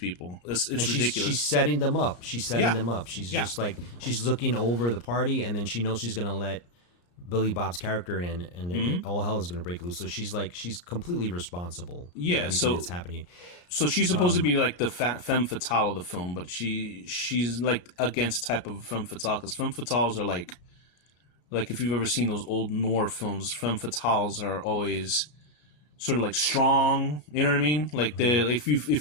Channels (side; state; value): right; late; 34 ms